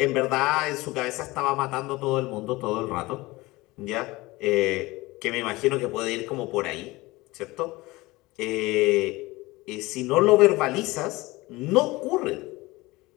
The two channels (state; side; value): quieter; right; 21.2 dB